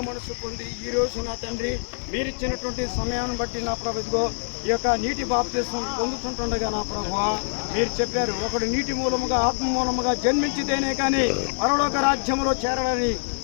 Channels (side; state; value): right; silent; digital silence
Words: మనసు పొంది ఈ రోజు నా తండ్రి మీరిచ్చినటువంటి సమయాన్ని బట్టి నా ప్రభు ఇదిగో ఈ యొక్క నీటి బాప్తిస్మం పొందుతుంటుండగా నా ప్రభువా మీరు చెప్పారు, ఒకడు నీటి మూలముగా ఆత్మ మూలముగా జన్మించితేనే కానీ పరలోక రాజ్యంలో చేరాలని